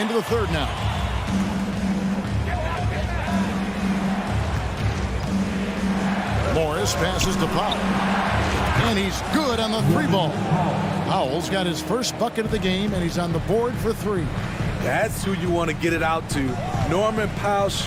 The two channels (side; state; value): both; identical; correlation 1.00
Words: the third now. Morris passes to Powell. And he's good on the 3-ball. Powell's got his first bucket of the game, and he's on the board for 3. That's who you want to get it out to. Norman Powell